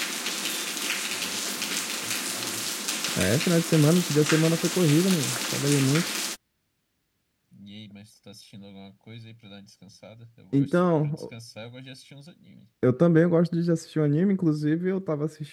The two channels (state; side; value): identical; both; correlation 1.00